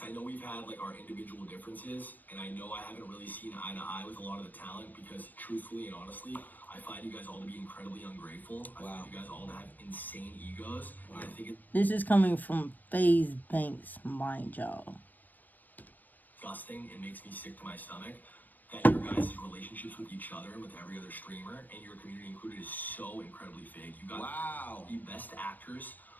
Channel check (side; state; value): right; late; 0.087 ms